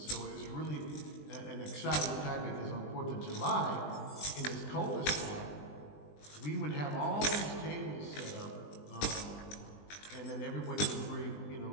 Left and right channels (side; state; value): right; late; 20 ms